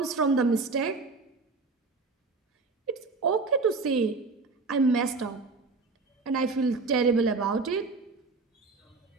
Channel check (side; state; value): left; quieter; 4.0 dB